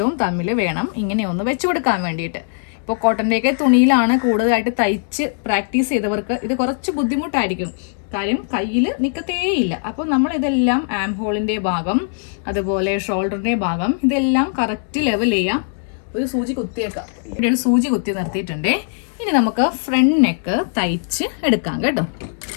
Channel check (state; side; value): silent; right; 66 dB below the other